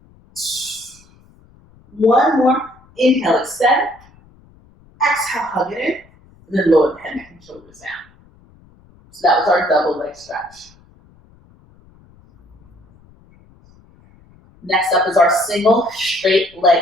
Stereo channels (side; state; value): left; noise; rumble, 28 dB below the sound